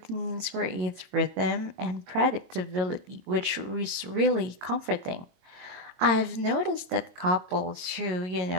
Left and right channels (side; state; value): left; late; 22 ms